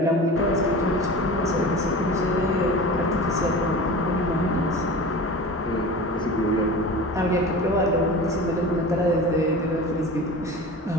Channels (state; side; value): normal; both; correlation 0.34